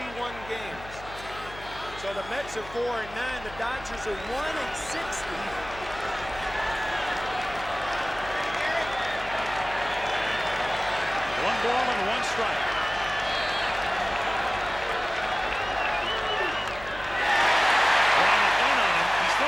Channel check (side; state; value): left; noise; hum, 16 dB below the sound